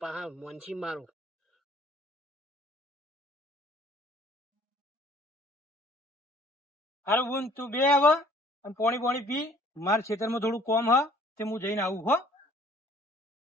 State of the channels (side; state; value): both; normal; correlation 0.55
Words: પાહા મોનસી મારું. હારું બૂન તું બે હવે અને પોણી પી. મારા ખેતરમાં થોડું કોમ હ તે હું જઈને આવું હો.